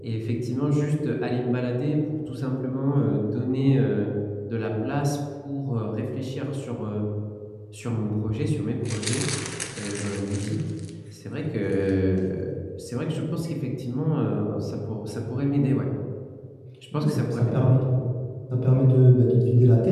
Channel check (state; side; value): identical; both; correlation 1.00